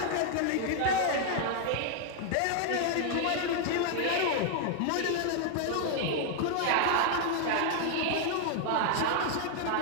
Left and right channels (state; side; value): different; both; correlation 0.00